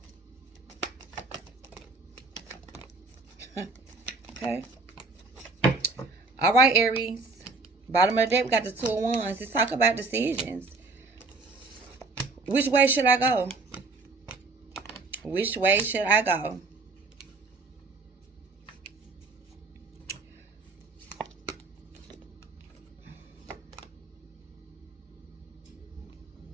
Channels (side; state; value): left; quieter; 3.8 dB